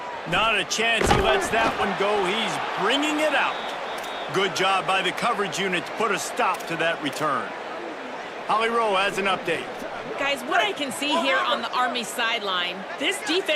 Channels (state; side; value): identical; both; correlation 1.00